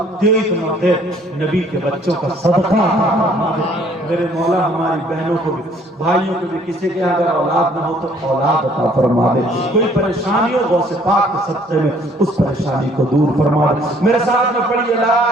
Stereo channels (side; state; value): both; normal; correlation 0.60